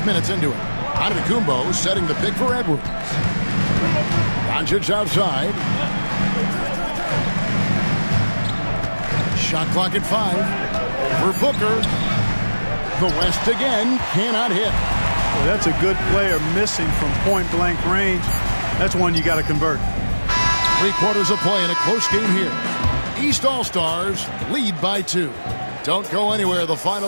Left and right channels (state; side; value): inverted; both; correlation -1.00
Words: minutes into it. Antetokounmpo setting the pick for Edwards. Doncic outside. Shot clock at 5. Over Booker. The West again cannot hit. Well, that's a good player missing from point-blank range. That's one you got to convert. 3 quarters of play in a close game here. East All-Stars lead by 2. Don't go anywhere. The